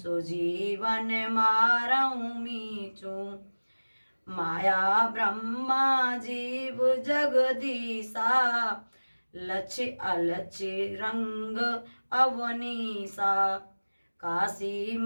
मारऊ मीचू। माया ब्रह्मा जीव जगदीसा, लक्ष्य अलक्ष्य रंग अवनीसा। काशी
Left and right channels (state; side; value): inverted; both; correlation -1.00